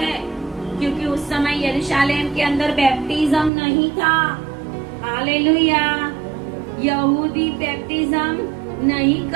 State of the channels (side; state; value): left; drops out; at 3.5 s